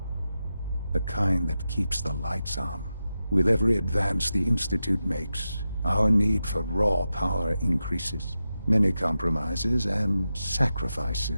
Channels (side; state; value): both; inverted; correlation -0.91